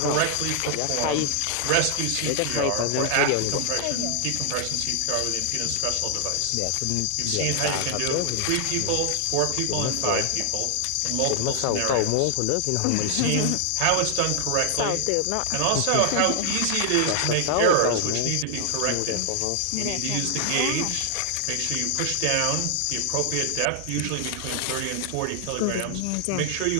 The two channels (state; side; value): different; both; correlation 0.00